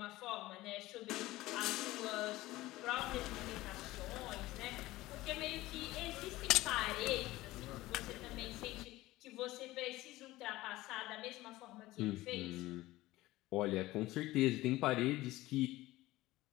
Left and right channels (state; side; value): quieter; right; 17.9 dB